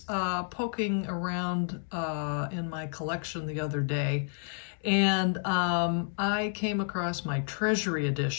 poking around in my collection the other day, and I came across my Treasury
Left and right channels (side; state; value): right; silent; 58 dB below the other